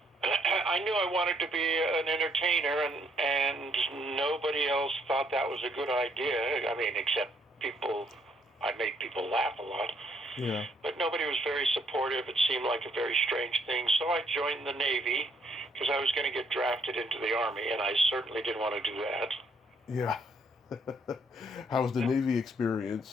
I knew I wanted to be an entertainer, and nobody else thought that was a good idea. I mean, except I made people laugh a lot. Yeah. But nobody was very supportive. It seemed like a very strange thing. So I joined the Navy because I was going to get drafted into the Army, and I certainly didn't want to do that. Yeah. How was the Navy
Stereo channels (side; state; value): both; normal; correlation 0.69